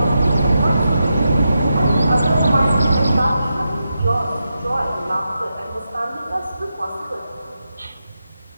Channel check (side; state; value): both; inverted; correlation -0.87